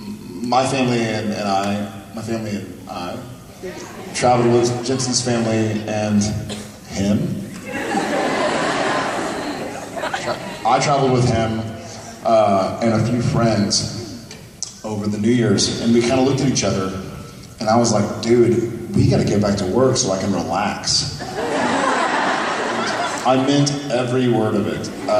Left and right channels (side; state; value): both; identical; correlation 1.00